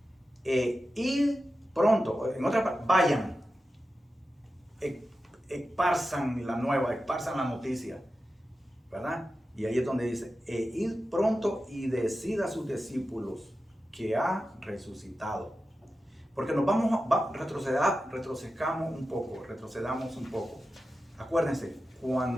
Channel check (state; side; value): normal; both; correlation 0.92